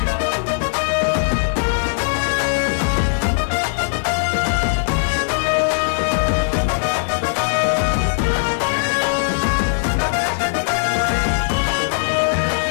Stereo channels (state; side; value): silent; right; digital silence